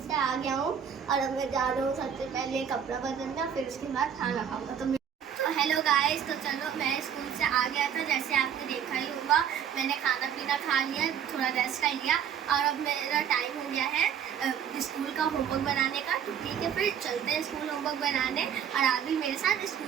आ गया हूँ और अब मैं जा रहा हूँ सबसे पहले कपड़ा बदलना, फिर उसके बाद खाना खाऊंगा। तो हेलो गाइस, तो चलो मैं स्कूल से आ गया था, जैसे आपने देखा ही होगा। मैंने खाना पीना खा लिया, थोड़ा रेस्ट कर लिया और अब मेरा टाइम हो गया है स्कूल का होमवर्क बनाने का। तो ठीक है, फिर चलते हैं स्कूल होमवर्क बनाने और आप भी मेरे साथ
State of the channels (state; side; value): quieter; left; 8.3 dB